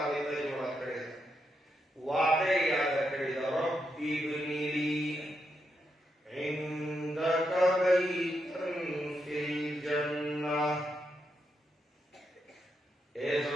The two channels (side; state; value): both; normal; correlation 0.82